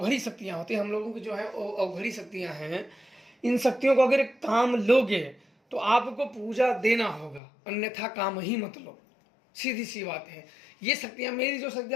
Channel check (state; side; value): drops out; right; at 7.4 s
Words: शक्तियाँ होती हैं, हम लोगों की जो है अवघड़ी शक्तियाँ हैं, इन शक्तियों को अगर काम लोगे तो आपको पूजा देना होगा, अन्यथा काम ही मत लो। सीधी सी बात है। ये शक्तियाँ, मेरी जो